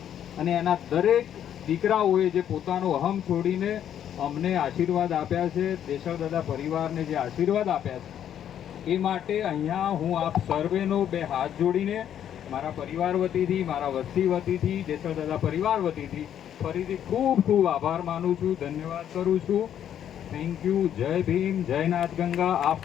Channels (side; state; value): right; quieter; 10.0 dB